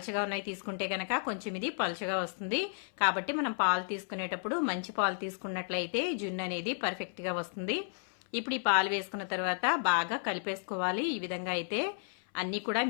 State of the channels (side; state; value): right; silent; 56 dB below the other